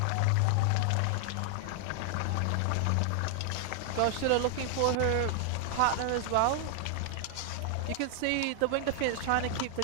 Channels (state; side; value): different; both; correlation 0.00